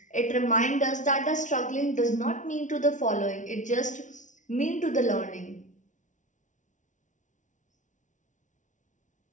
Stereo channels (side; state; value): right; late; 0.37 ms